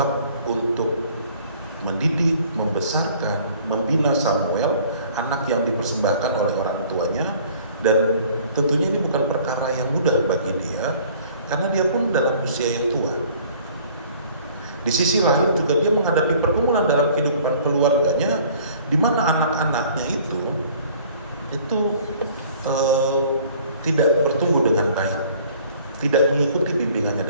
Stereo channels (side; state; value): both; inverted; correlation -0.53